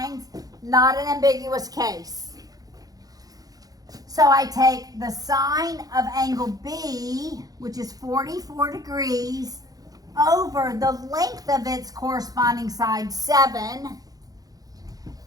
not an ambiguous case. So I take the sine of angle B, which is 44 degrees, over the length of its corresponding side, 7,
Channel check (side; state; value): left; late; 0.18 ms